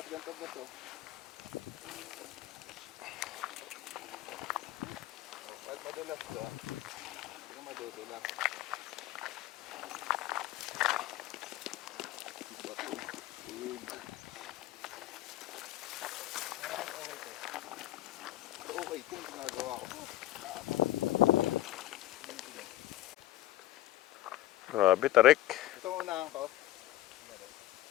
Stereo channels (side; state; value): right; quieter; 14.7 dB